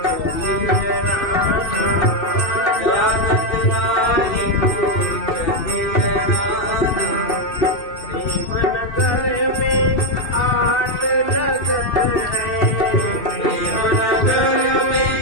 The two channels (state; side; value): late; right; 2.7 ms